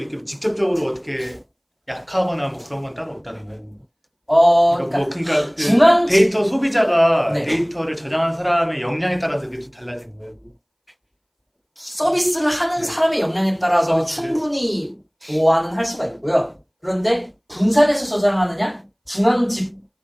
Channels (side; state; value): both; identical; correlation 1.00